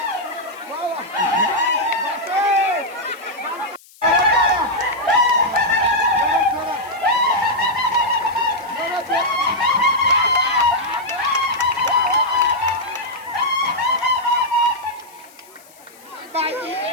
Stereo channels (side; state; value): left; noise; hiss, 25 dB below the sound